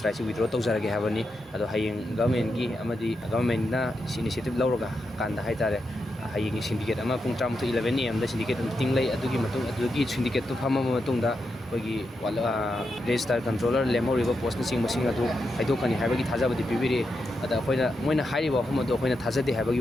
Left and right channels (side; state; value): both; normal; correlation 0.86